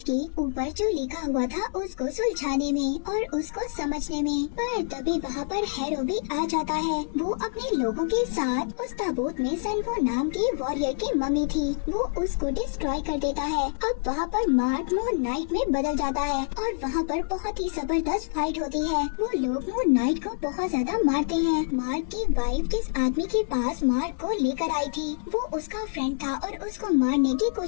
के ऊपर जो लिखा हुआ था उसको सुलझाने में और उसको समझने में। पर तभी वहाँ पर हैरो भी आ जाता है। वो अपने लोगों के साथ उस ताबूत में सनफू नाम की वॉरियर की मम्मी थी, वो उसको डिस्ट्रॉय कर देता है। अब वहाँ पर मार्क मून नाइट में बदल जाता है और वहाँ पर बहुत ही जबरदस्त फाइट होती है। वो लोग मून नाइट को बहुत ज्यादा मारते हैं। मार्क की वाइफ जिस आदमी के पास मार्क को लेकर आई थी वो उसका फ्रेंड था और उसको मारने की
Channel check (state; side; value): silent; right; 60 dB below the other